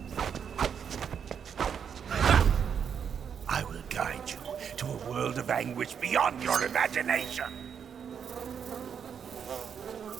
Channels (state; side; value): quieter; left; 7.5 dB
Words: I will guide you to a world of anguish beyond your imagination.